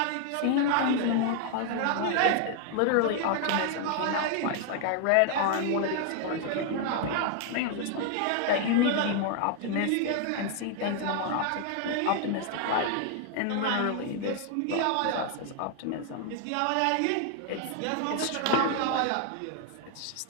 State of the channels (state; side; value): different; both; correlation 0.00